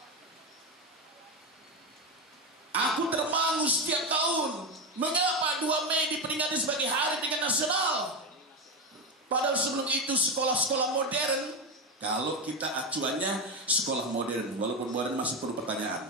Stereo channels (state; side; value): normal; both; correlation 0.14